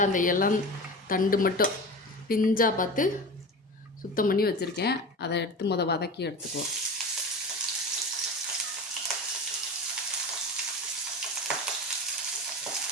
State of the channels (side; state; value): both; normal; correlation 0.30